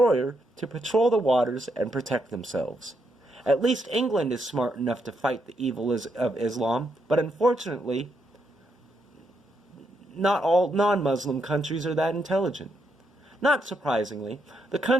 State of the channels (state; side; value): normal; both; correlation 0.79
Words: to patrol the waters and protect themselves. At least England is smart enough to fight the evil of Islam, but unfortunately, not all non-Muslim countries are that intelligent. Not surprisingly, the